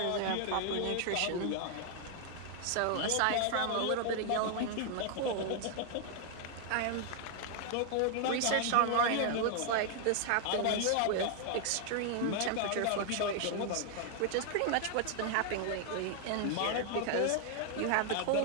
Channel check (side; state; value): both; different; correlation 0.00